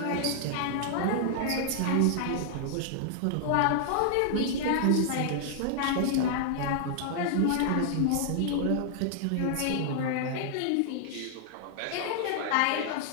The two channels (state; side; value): different; both; correlation -0.01